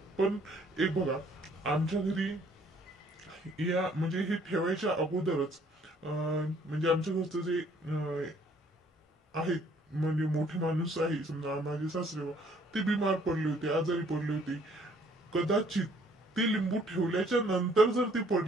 पण एक बघा, आमच्या घरी या म्हणजे हे ठेवायच्या अगोदरच म्हणजे आमच्या घरचं जे आहेत, म्हणजे मोठे माणूस आहे समजा माझे सासरे बुवा, ते बिमार पडले होते, आजारी पडले होते. कदाचित ते लिंबू ठेवल्याच्या नंतर जर ते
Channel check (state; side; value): normal; both; correlation 0.62